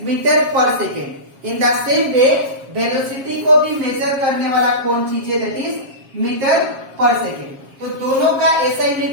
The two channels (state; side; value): late; left; 7.4 ms